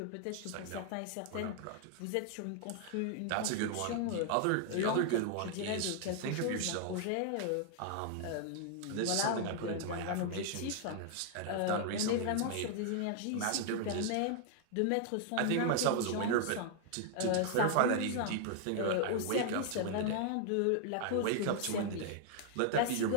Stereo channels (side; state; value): both; different; correlation 0.00